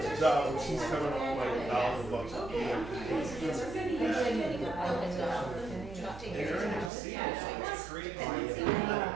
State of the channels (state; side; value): drops out; left; at 6.9 s